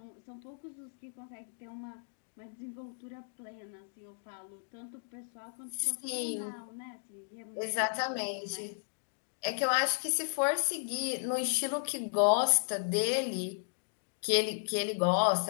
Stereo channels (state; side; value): silent; right; digital silence